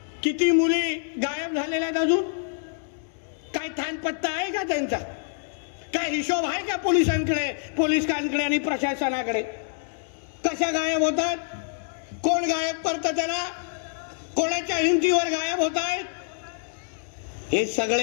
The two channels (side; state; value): right; silent; digital silence